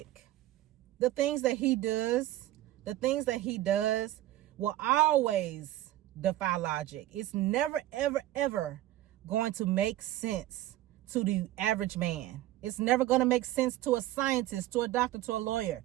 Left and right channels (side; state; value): left; quieter; 14.8 dB